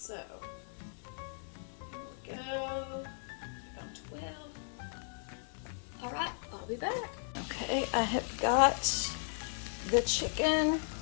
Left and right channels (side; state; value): right; silent; 54 dB below the other